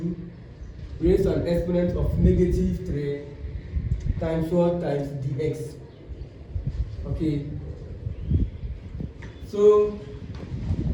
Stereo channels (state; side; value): identical; both; correlation 1.00